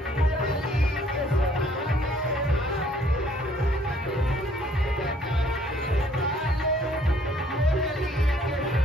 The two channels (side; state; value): both; normal; correlation 0.62